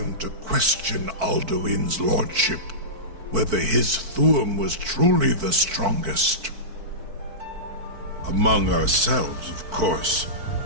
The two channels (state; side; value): late; left; 4.5 ms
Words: to question Alduin's lordship, whether his Thuum was truly the strongest. Among ourselves, of course,